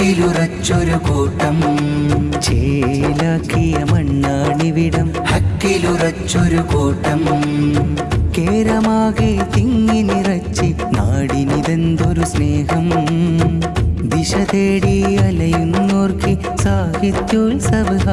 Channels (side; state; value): both; identical; correlation 1.00